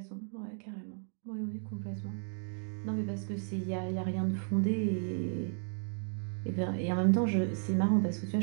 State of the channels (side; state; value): left; silent; 55 dB below the other